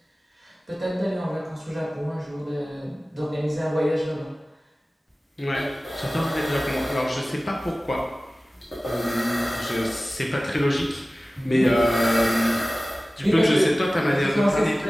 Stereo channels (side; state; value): both; normal; correlation 0.97